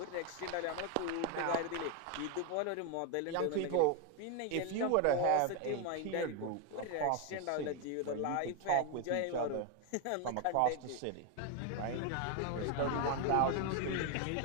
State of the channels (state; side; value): different; both; correlation 0.01